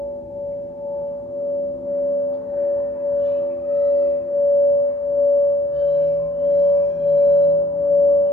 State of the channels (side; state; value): both; normal; correlation 0.60